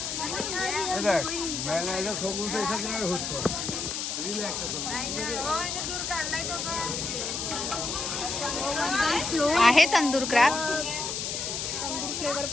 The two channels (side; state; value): left; noise; hiss, 3 dB below the sound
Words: आहे तंदूर क्रॅब. फ्लेवर